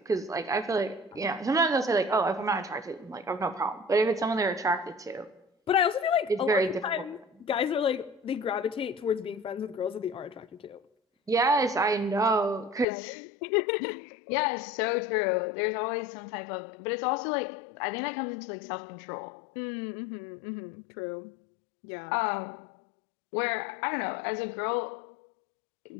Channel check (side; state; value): right; drops out; at 12.9 s